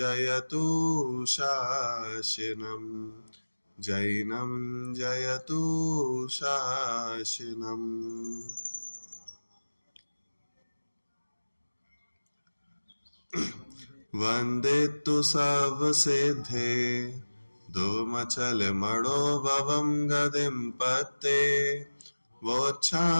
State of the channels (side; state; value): both; inverted; correlation -1.00